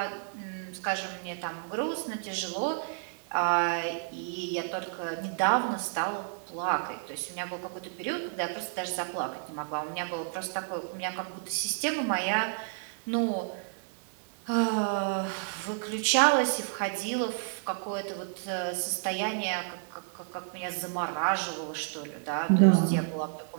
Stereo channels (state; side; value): silent; left; digital silence